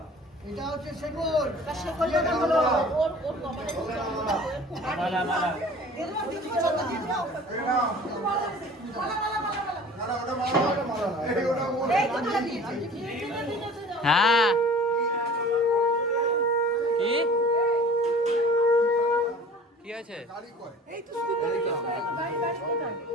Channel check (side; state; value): both; normal; correlation 0.45